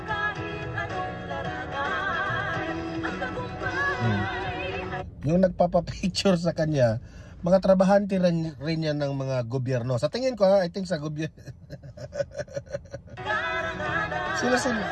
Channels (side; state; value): both; identical; correlation 1.00